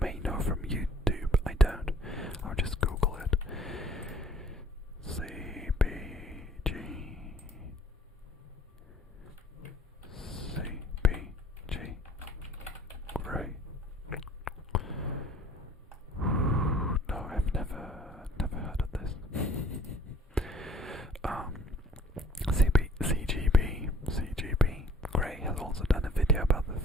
know from YouTube. I don't. I'll just Google it. CBG Grey. No, I've never heard of this. CGB Grey has also done a video about the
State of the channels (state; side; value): normal; both; correlation 0.54